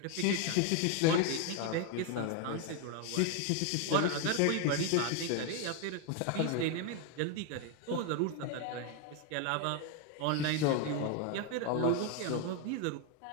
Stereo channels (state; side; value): different; both; correlation 0.01